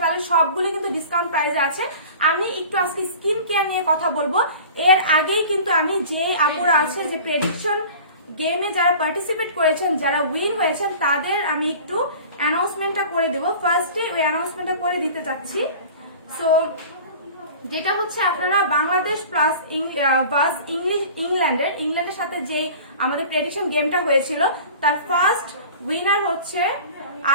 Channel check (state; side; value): inverted; both; correlation -0.41